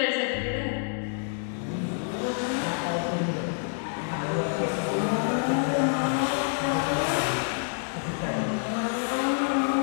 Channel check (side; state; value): right; silent; 57 dB below the other